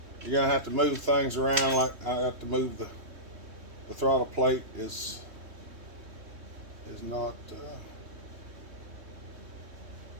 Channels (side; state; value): left; late; 3.1 ms